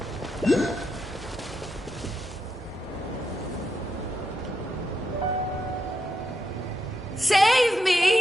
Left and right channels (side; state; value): both; normal; correlation 0.82